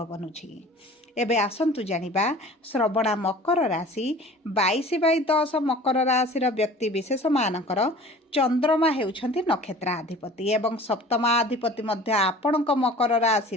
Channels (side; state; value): both; normal; correlation 0.44